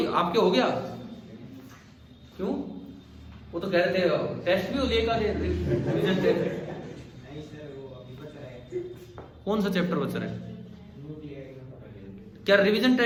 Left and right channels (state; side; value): identical; both; correlation 1.00